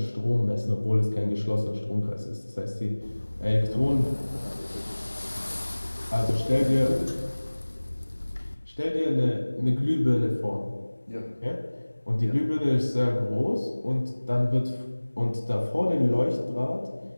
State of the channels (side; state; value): both; inverted; correlation -1.00